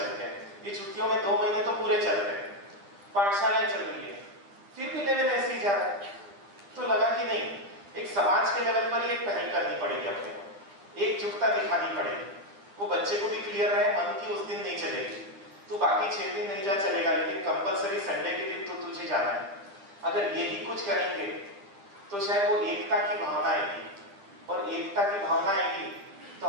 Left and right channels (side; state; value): left; late; 10 ms